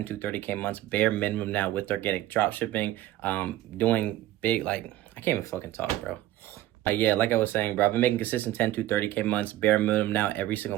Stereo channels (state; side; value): quieter; left; 14.7 dB